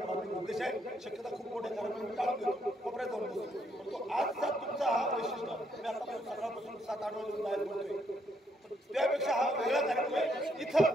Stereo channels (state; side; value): normal; both; correlation 0.73